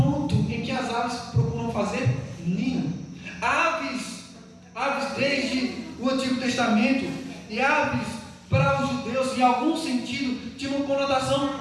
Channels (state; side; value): identical; both; correlation 1.00